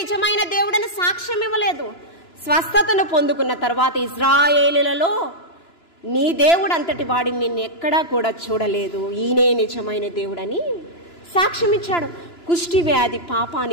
దేవుడని సాక్ష్యం ఇవ్వలేదు. స్వస్థతను పొందుకున్న తర్వాత ఇజ్రాయేలులలో నీ దేవుడు అంతటి వాడిని నిన్ను ఎక్కడా కూడా చూడలేదు, ఈయనే నిజమైన దేవుడని సాక్ష్యం ఇచ్చాడు. కుష్టి వ్యాధి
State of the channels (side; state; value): right; late; 2.9 ms